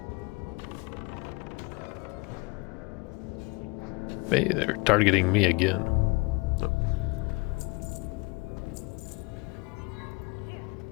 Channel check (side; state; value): right; quieter; 26.8 dB